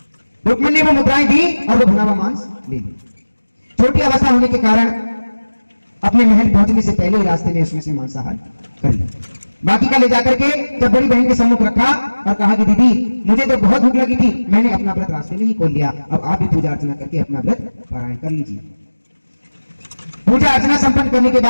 रुक्मणी ने वो मुद्राएं दी और वो भुना हुआ मांस ले लिया। छोटी अवस्था होने के कारण अपने महल पहुंचने से पहले ही रास्ते में उसमें से मांसाहार कर लिया। बाकी का ले जाकर के जब बड़ी बहन के सम्मुख रखा और कहा कि दीदी मुझे तो बहुत भूख लगी थी, मैंने अपना व्रत रास्ते में ही खोल लिया, अब आप भी पूजा अर्चना करके अपना व्रत पारायण कर लीजिए। पूजा अर्चना संपन्न करने के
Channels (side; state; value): both; inverted; correlation -1.00